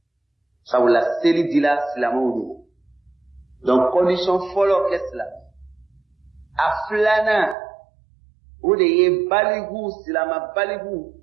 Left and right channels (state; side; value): drops out; left; at 7.6 s